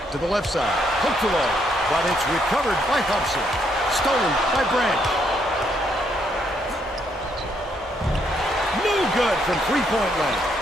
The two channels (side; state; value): both; normal; correlation 0.73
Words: to the left side. Hooked along, but it's recovered by Hobson. Stolen by Branch. Good from three-point land.